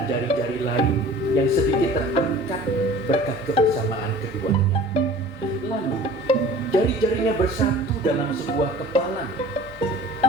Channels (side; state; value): both; normal; correlation 0.45